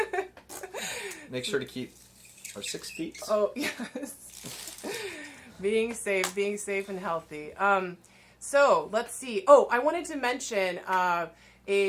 in. Make sure to keep our 6 feet. Oh yes. Being safe and healthy. So let's see. Oh, I wanted to mention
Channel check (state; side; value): identical; both; correlation 1.00